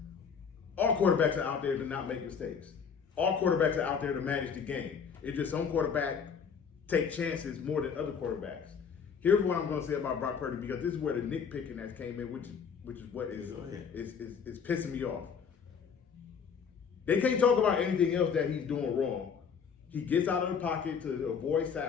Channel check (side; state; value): right; quieter; 6.5 dB